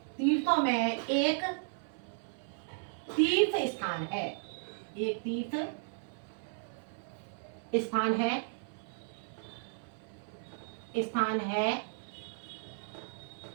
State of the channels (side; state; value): left; silent; 55 dB below the other